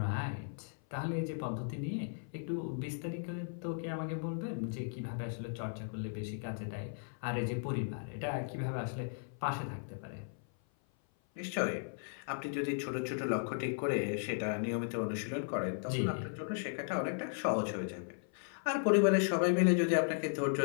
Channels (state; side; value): silent; right; 54 dB below the other